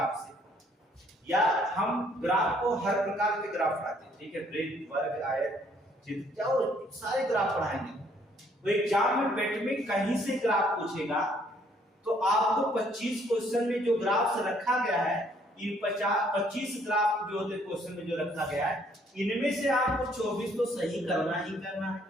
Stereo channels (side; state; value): both; normal; correlation 0.65